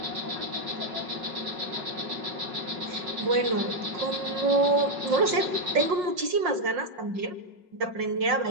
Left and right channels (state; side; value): late; left; 5.6 ms